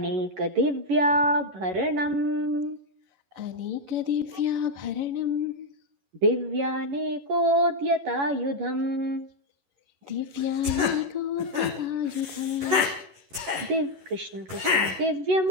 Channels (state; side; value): late; left; 11 ms